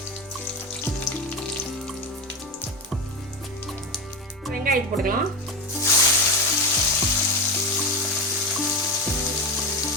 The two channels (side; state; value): both; normal; correlation 0.17